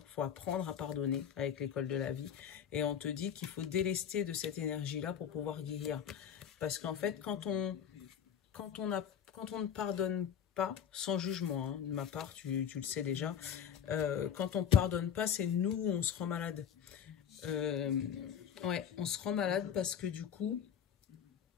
Il faut apprendre à pardonner avec l'école de la vie. Et on te dit qu'il faut délester de cette énergie-là pour pouvoir guérir. Parce qu'en fait, quand on ne pardonne pas, sans jugement, hein, de ma part, tu le sais déjà, quand on ne pardonne pas, c'est nous où on se rend malade. Ouais, on se rend malade parce que du coup,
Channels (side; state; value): right; quieter; 8.5 dB